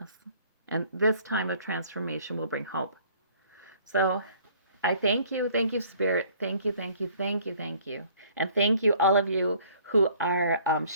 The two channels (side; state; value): both; inverted; correlation -0.57